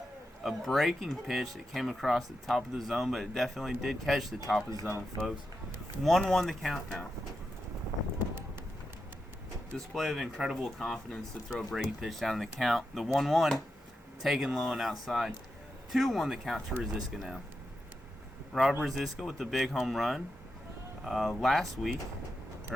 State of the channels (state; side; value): normal; both; correlation 0.87